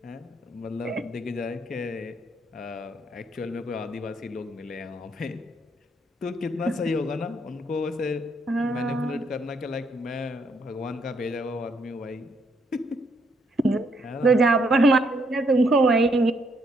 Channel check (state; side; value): normal; both; correlation 0.73